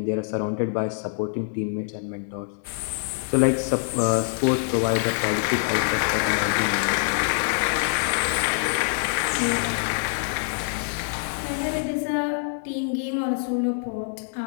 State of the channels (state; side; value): silent; right; digital silence